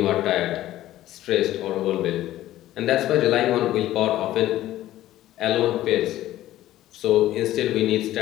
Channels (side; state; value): right; quieter; 14.3 dB